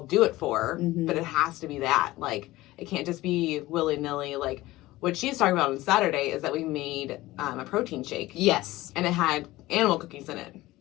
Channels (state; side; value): quieter; right; 18.0 dB